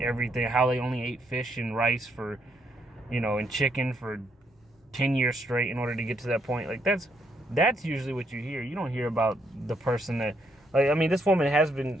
everything, how they only ate fish and rice for, you know, and chicken for 10 years straight in order to get to that point. Like, that's usually what you hear. You don't hear about the person that, like, I mean, this woman has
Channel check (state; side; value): normal; both; correlation 0.74